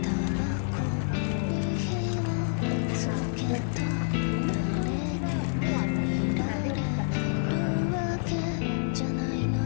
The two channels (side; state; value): right; silent; digital silence